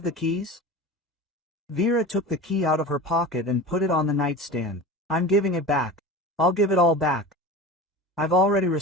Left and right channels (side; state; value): both; normal; correlation 0.33